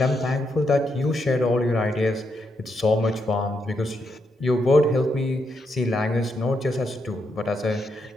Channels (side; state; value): both; normal; correlation 0.81